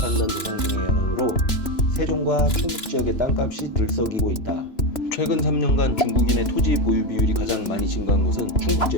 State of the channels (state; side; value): late; right; 2.9 ms